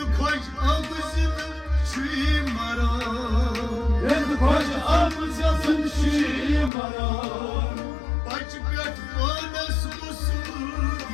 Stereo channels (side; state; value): right; drops out; at 6.7 s